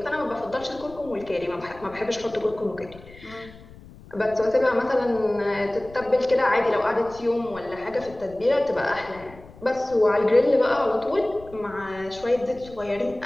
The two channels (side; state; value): left; noise; rumble, 20 dB below the sound